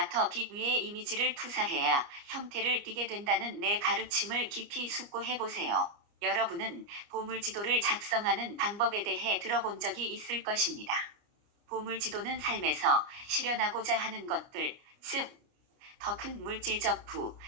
빛 위에 이미지를 투사해야 형태를 띠게 된다는 내 가르침을 깊이 숙고해 보세요. 여러분은 보물지도를 작성하는 방법에 대해 들어본 적이 있을 것입니다. 보물지도는 삶에서 실현하고자 하는 것들, 즉, 더 큰 물질적 부,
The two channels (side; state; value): left; late; 29 ms